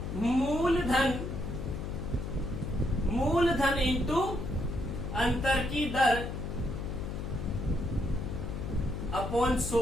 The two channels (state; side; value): noise; left; hum, 5 dB below the sound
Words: मूलधन इंटू अंतर की दर अपॉन